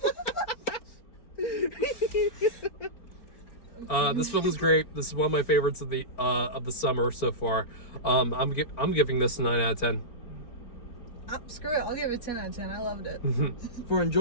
it. This film is great. This is one of my favorites of the summer so far. I'm giving this a 9 out of 10. Screw it. I'll give it 10 out of 10. I loved it. For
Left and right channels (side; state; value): right; late; 4.4 ms